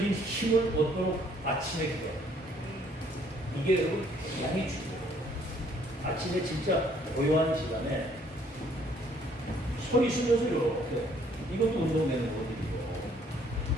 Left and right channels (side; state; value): both; normal; correlation 0.63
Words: 힘을 얻도록 아침에 기도합니다. 이게 여러분 굉장히 중요해요. 아침에 진짜 고요한 시간에 소리 쉬면서 이렇게 이것도 운동되는 거거든요.